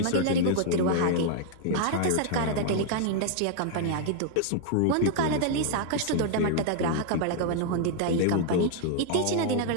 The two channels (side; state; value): both; different; correlation 0.00